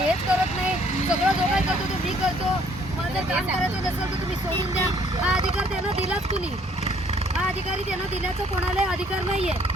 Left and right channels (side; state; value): both; normal; correlation 0.62